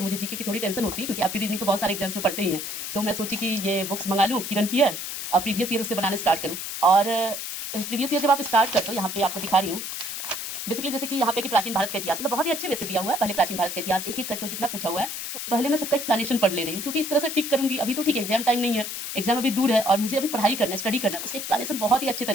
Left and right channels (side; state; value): left; noise; hiss, 6 dB below the sound